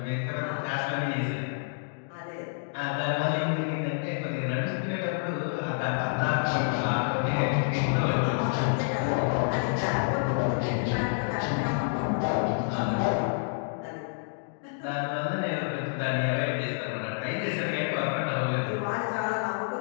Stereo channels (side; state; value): right; silent; digital silence